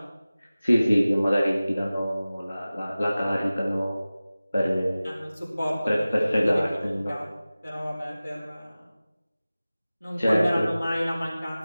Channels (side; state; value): both; inverted; correlation -0.97